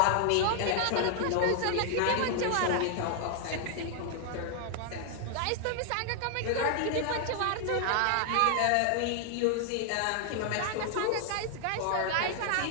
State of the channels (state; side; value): different; both; correlation 0.00